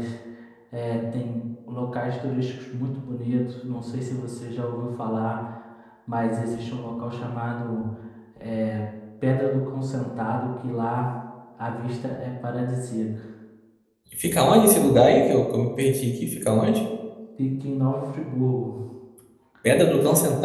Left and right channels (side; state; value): both; identical; correlation 1.00